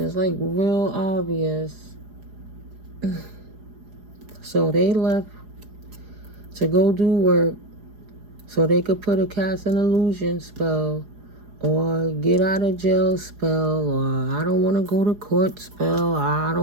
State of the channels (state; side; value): late; left; 4.8 ms